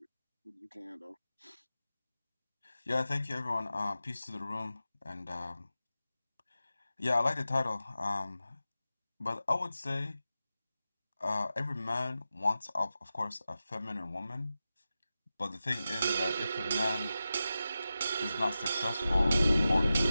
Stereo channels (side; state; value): both; inverted; correlation -0.93